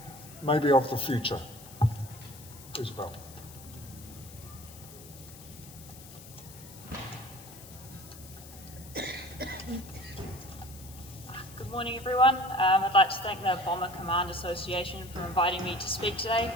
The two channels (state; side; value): noise; left; hiss, 18 dB below the sound